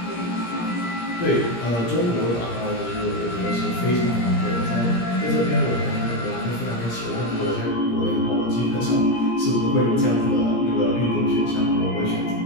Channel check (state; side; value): late; right; 17 ms